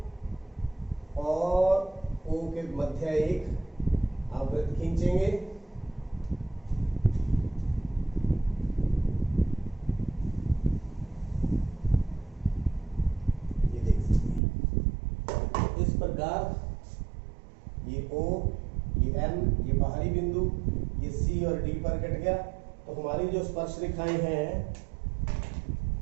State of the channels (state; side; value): drops out; left; at 14.4 s